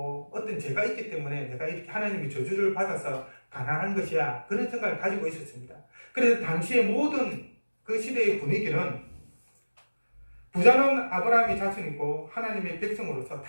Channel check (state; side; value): inverted; both; correlation -1.00